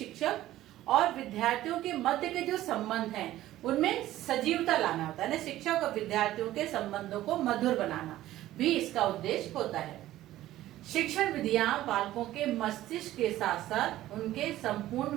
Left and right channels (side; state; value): left; quieter; 14.6 dB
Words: और विद्यार्थियों के मध्य के जो संबंध हैं उनमें सजीवता लाना होता है ना। शिक्षक और विद्यार्थियों के संबंधों को मधुर बनाना भी इसका उद्देश्य होता है। शिक्षण विधियां बालकों के मस्तिष्क के साथ साथ उनके संपूर्ण